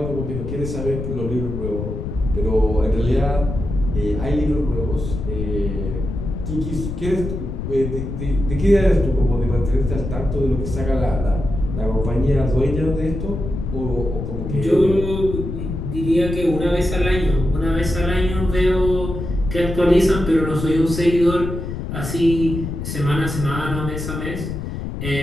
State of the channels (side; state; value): left; noise; rumble, 5 dB below the sound